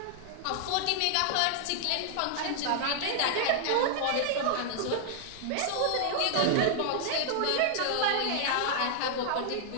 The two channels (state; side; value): different; both; correlation -0.01